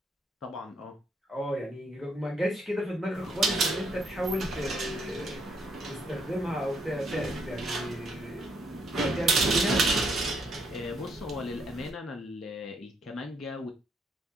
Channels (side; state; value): both; normal; correlation 0.73